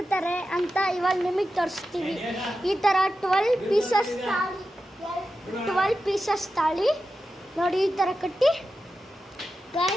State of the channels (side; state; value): both; normal; correlation 0.91